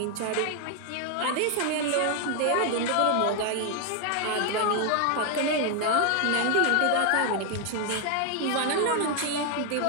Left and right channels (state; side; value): different; both; correlation 0.01